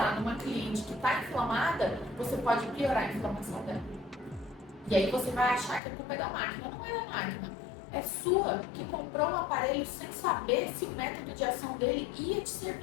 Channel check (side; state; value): right; drops out; at 5.8 s